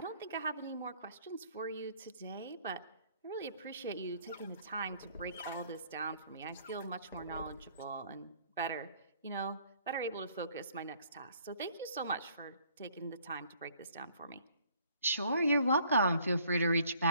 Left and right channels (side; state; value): both; inverted; correlation -0.61